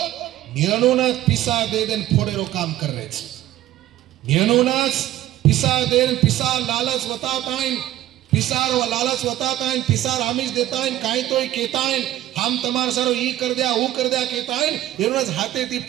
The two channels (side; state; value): left; quieter; 13.9 dB